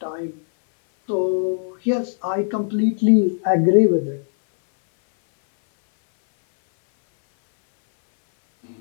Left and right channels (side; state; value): right; silent; 62 dB below the other